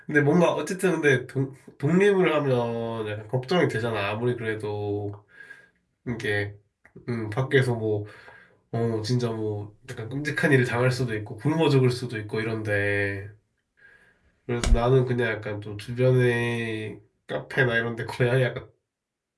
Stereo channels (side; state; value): both; identical; correlation 1.00